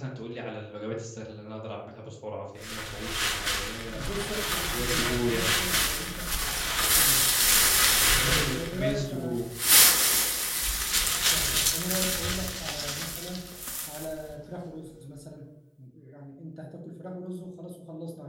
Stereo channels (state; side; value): identical; both; correlation 1.00